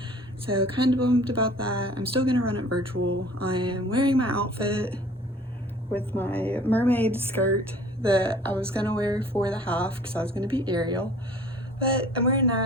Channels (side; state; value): both; normal; correlation 0.50